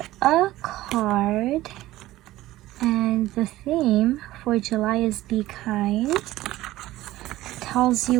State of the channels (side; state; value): left; quieter; 16.3 dB